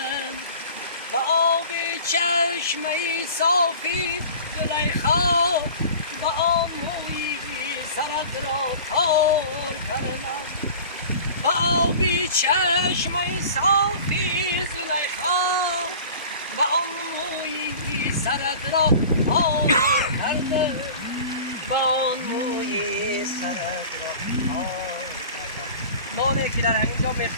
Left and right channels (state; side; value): inverted; both; correlation -0.41